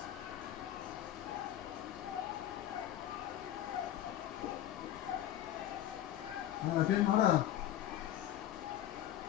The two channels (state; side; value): quieter; right; 12.1 dB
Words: Ahora bien, ahora.